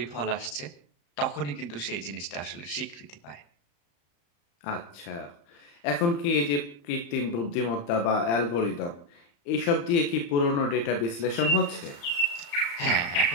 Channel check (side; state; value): right; late; 35 ms